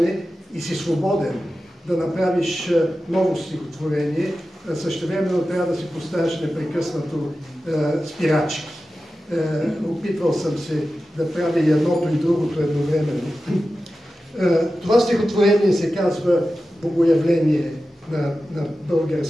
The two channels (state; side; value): normal; both; correlation 0.93